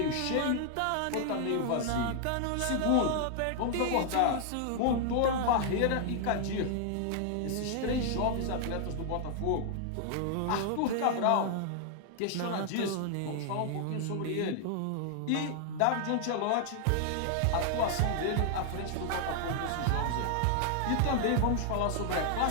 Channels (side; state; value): both; different; correlation 0.00